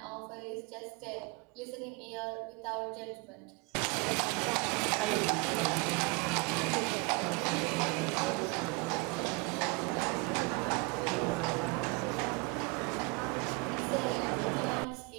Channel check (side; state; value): left; quieter; 28.4 dB